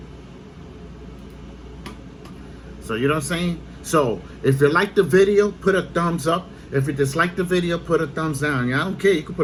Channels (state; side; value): identical; both; correlation 1.00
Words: So, you know what I'm saying? So, if you like the video, put a thumbs up. If you dislike the video, put a thumbs down. Yeah, I don't care. You can